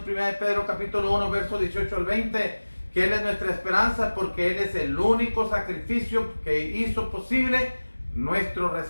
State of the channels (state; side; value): inverted; both; correlation -1.00